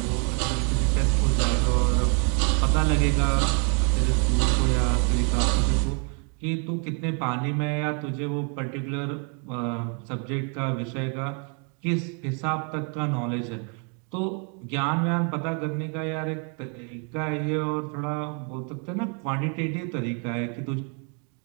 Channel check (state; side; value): quieter; left; 38.9 dB